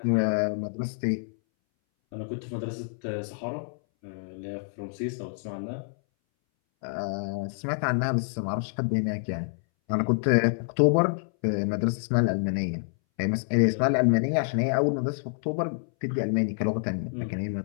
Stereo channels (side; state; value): right; silent; 60 dB below the other